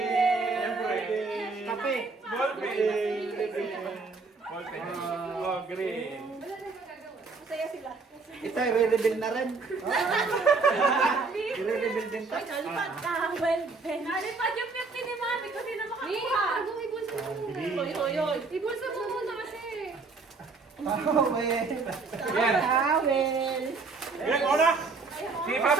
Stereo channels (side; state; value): left; quieter; 4.1 dB